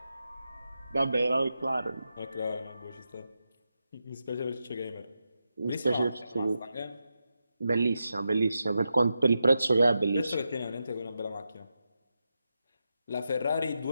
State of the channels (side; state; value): both; inverted; correlation -0.88